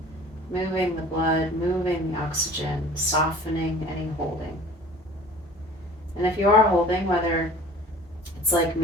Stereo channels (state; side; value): normal; both; correlation 0.45